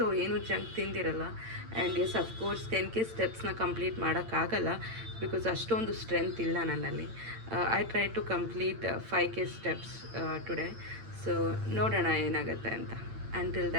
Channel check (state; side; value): late; left; 8.9 ms